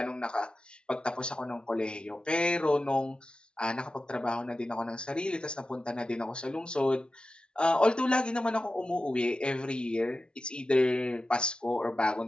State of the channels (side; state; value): right; late; 0.055 ms